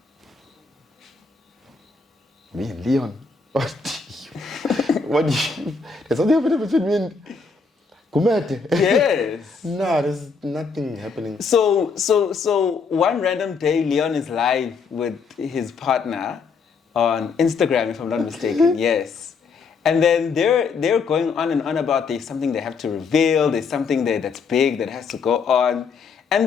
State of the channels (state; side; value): quieter; right; 5.0 dB